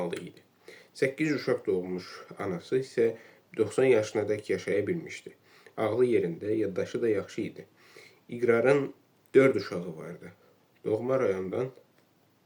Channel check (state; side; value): identical; both; correlation 1.00